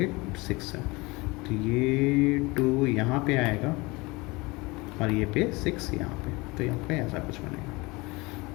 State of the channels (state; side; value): quieter; right; 24.1 dB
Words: 6 है. तो ये 2 यहाँ पे आएगा और ये पे 6 यहाँ पे. तो यहाँ पे ऐसा कुछ बनेगा.